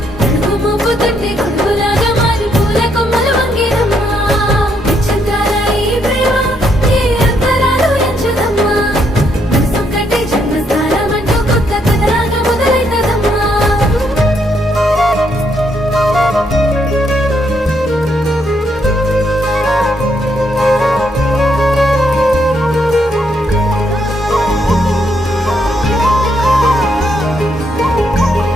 అడుగు మోపు తొట్టి గొడుగులాగా మారి పూల కొమ్మలు వంగేనమ్మా. నిశ్చంతాల ఈ ప్రేమ ఏ అంతరాలు ఎంచుదమ్మా, మనసు కట్టి జన్మస్థానం అంటూ కొత్త కథలాగా మొదలైతదమ్మా.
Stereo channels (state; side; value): normal; both; correlation 0.75